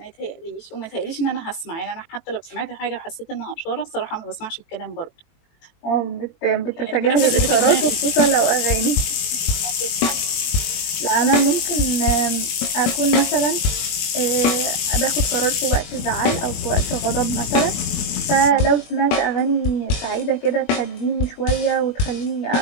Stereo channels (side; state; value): right; late; 20 ms